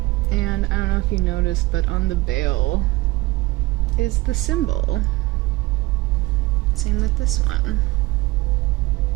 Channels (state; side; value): quieter; left; 20.8 dB